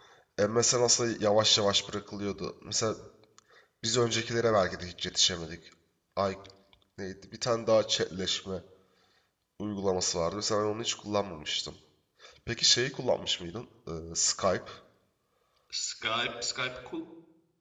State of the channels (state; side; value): identical; both; correlation 1.00